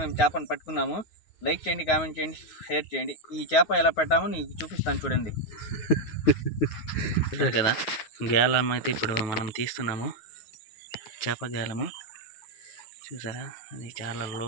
మేము చేపను పట్టుకున్నాము. లైక్ చేయండి, కామెంట్ చేయండి, షేర్ చేయండి. ఈ చేప ఎలా పెట్టామో నీకు చూపిస్తాను చూడండి. చూడారు కదా, గేలం అయితే ఇప్పుడు మనం తీస్తున్నాము. చేప గేలము చూసారా, అది చాలా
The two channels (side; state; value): right; late; 9.5 ms